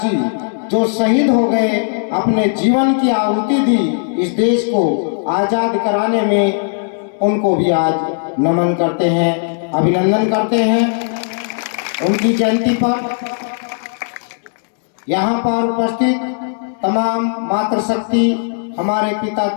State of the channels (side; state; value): right; silent; digital silence